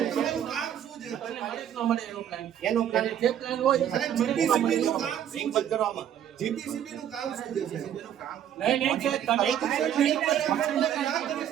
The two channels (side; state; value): left; quieter; 10.0 dB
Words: એનો પ્લાન જે પ્લાન હોય જીપીસીબી નું કામ શું છે કરવામાં? જીપીસીબી નું કામ શું છે? જીપીસીબી નું કામ નહીં છે.